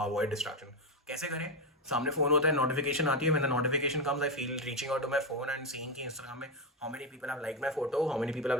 distraction. कैसे करें? सामने फोन होता है, नोटिफिकेशन आती है. When the notification comes, I feel reaching out to my phone and seeing कि Instagram में how many people have liked my photo, how many people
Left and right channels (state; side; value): normal; both; correlation 0.10